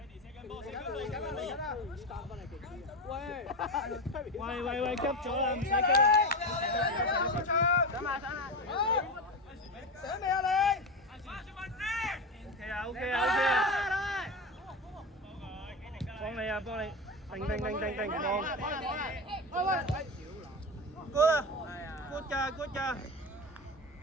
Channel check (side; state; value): both; normal; correlation 0.20